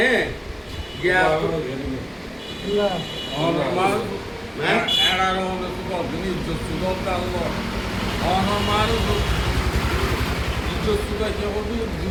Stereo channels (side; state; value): both; identical; correlation 1.00